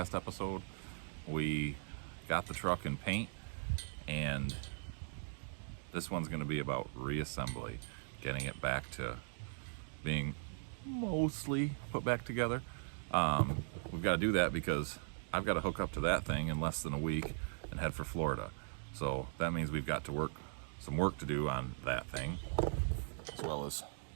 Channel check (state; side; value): silent; left; digital silence